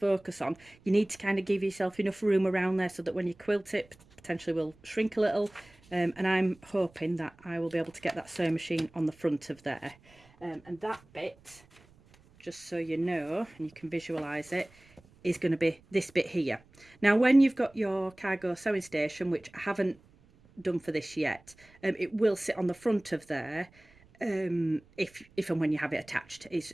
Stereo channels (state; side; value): noise; right; rumble, 28 dB below the sound